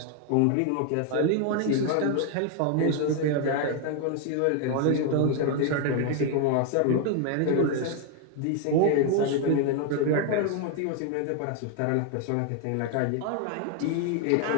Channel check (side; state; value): both; different; correlation 0.01